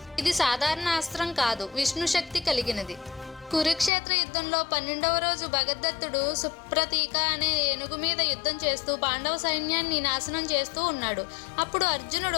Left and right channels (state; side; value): drops out; right; at 3.9 s